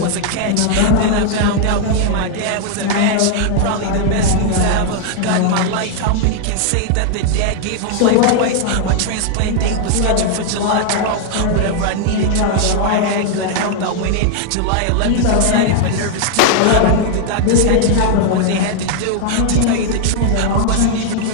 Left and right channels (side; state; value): both; different; correlation 0.00